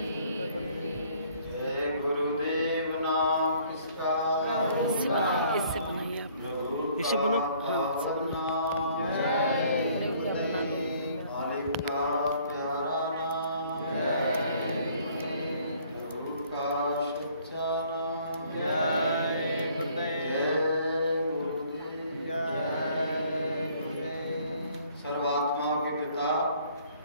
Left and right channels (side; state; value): both; inverted; correlation -0.60